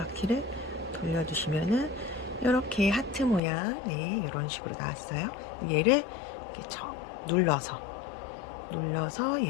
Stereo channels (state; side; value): drops out; right; at 3.4 s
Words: 돌려주시면은 이렇게 하트 모양, 네, 이런 식으로 나왔어요. 얘를 이렇게 눌러서